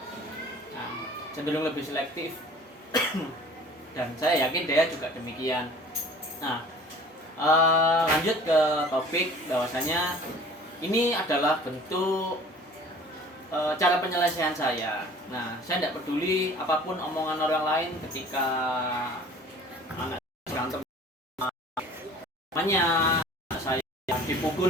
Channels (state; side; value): normal; both; correlation 0.47